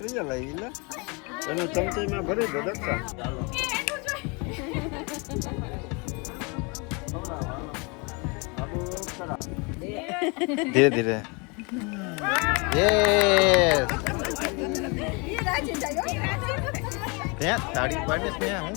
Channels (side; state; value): right; quieter; 30.5 dB